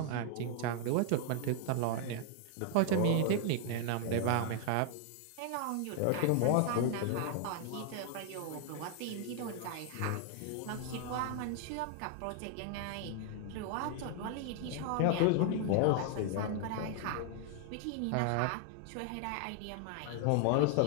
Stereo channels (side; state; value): both; different; correlation 0.00